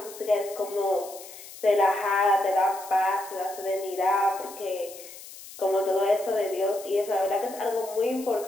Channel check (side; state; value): left; noise; hiss, 16 dB below the sound